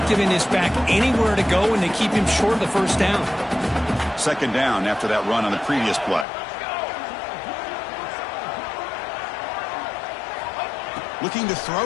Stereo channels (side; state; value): right; drops out; at 6.2 s